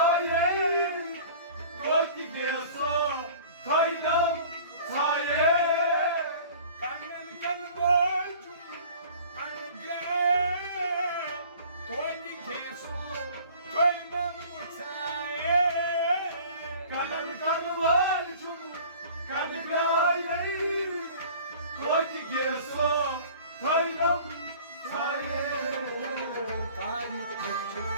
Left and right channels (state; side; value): inverted; both; correlation -0.46